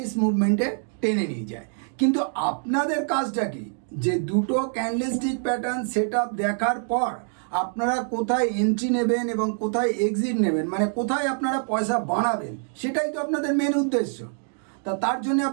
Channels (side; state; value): left; silent; 59 dB below the other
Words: মুভমেন্টে টেনে নিয়ে যায়। কিন্তু আপনাদের কাজটা কি? যে দুটো ক্যান্ডেলস্টিক প্যাটার্ন সেট আপ দেখার পর আপনারা কোথায় এন্ট্রি নেবেন এবং কোথায় এক্সিট নেবেন, মানে কোথায় আপনারা পয়সা বানাবেন, সেটাই তো আপনাদের মেন উদ্দেশ্য। তার জন্য